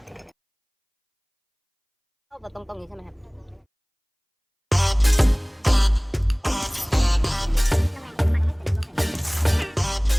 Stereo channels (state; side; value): identical; both; correlation 1.00